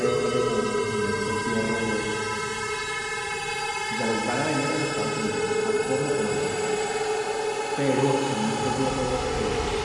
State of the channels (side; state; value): both; identical; correlation 1.00